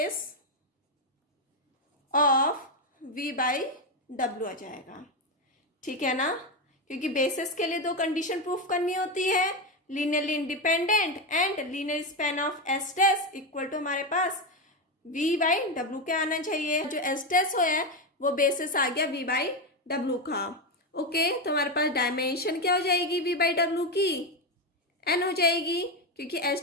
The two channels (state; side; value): normal; both; correlation 0.11